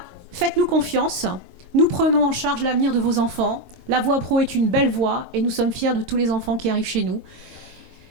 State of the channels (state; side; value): late; left; 22 ms